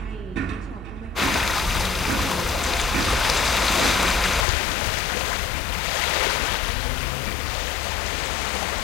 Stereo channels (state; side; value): drops out; right; at 4.5 s